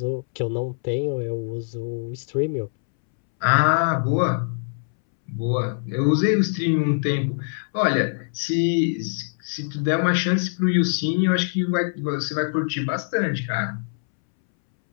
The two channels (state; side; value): silent; right; 63 dB below the other